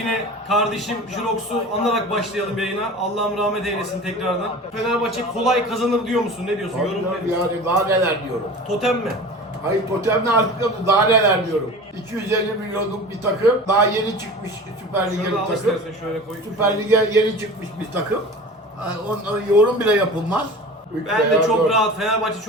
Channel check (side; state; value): both; normal; correlation 0.37